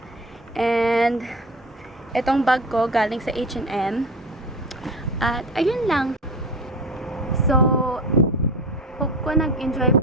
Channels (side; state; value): both; normal; correlation 0.31